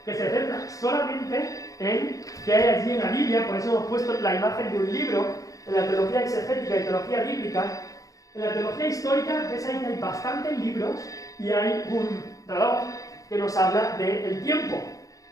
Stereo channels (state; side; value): late; right; 0.17 ms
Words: que se centra solamente en qué hay allí en la Biblia, por eso hemos puesto la imagen de un libro, en la teología exegética y teología bíblica, en la teología histórica ves ahí que hay bastantes libros y hay un reloj que nos habla del tiempo.